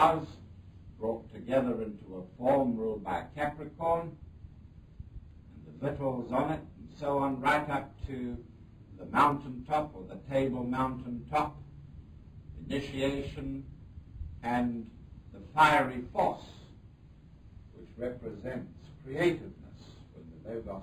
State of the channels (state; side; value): identical; both; correlation 1.00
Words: brought together into a form ruled by Capricorn, and the victuals on it, and so on, right up to the mountaintop, or the table mountaintop, initiation, and the fiery force, which represents creativeness. When the